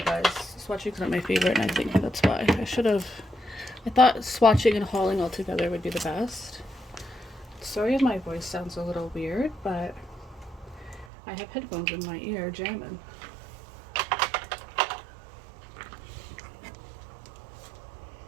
guys, swatching's not my favorite, and I think that's why I thought swatching and hauling all together would be the best. Sorry if my voice sounds a little weird, but I have headphones in my ear jamming.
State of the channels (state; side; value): drops out; left; at 11.1 s